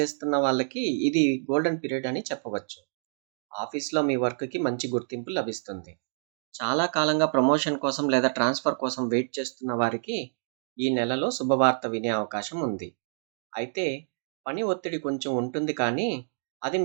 వాళ్ళకి ఇది గోల్డెన్ పీరియడ్ అని చెప్పవచ్చు. ఆఫీస్‌లో మీ వర్క్‌కి మంచి గుర్తింపు లభిస్తుంది. చాలా కాలంగా ప్రమోషన్ కోసం లేదా ట్రాన్స్‌ఫర్ కోసం వెయిట్ చేస్తున్న వారికి ఈ నెలలో శుభవార్త వినే అవకాశం ఉంది. అయితే పని ఒత్తిడి కొంచెం ఉంటుంది కానీ అది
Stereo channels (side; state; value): left; silent; digital silence